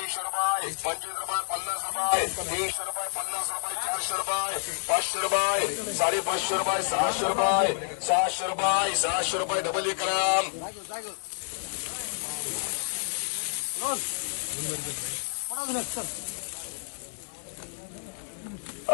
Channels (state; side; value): silent; right; 59 dB below the other